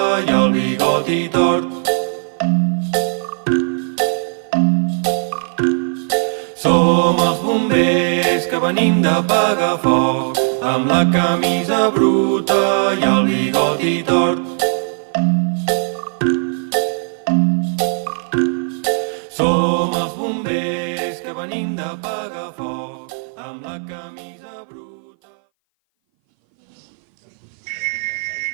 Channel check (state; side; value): silent; left; 59 dB below the other